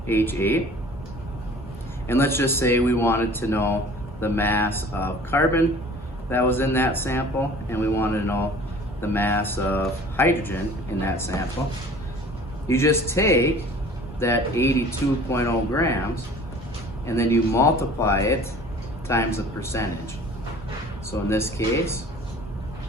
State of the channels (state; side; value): normal; both; correlation 0.47